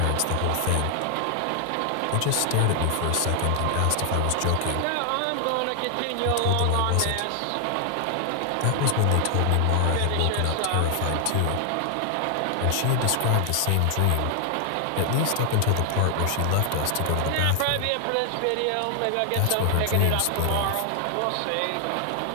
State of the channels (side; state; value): both; different; correlation 0.00